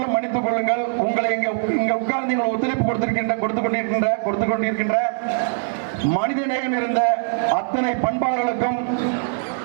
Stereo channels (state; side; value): silent; left; digital silence